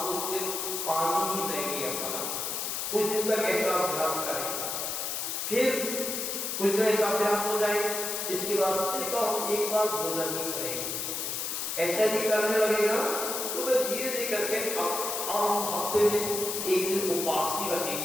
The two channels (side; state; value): left; noise; hiss, 2 dB below the sound